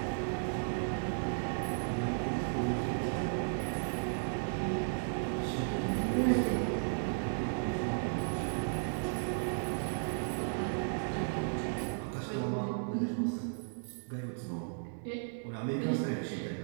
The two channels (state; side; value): silent; left; digital silence